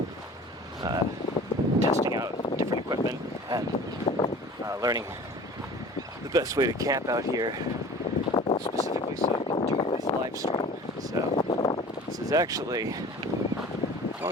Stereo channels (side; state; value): both; normal; correlation 0.42